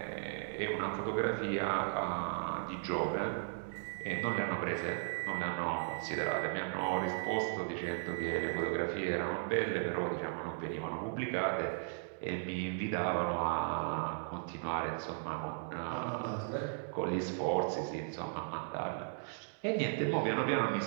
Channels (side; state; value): left; silent; digital silence